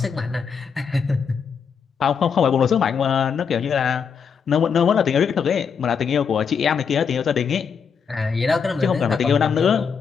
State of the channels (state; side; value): quieter; right; 6.4 dB